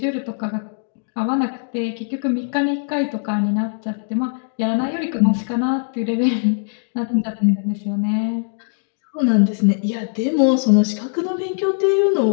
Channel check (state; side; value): silent; right; digital silence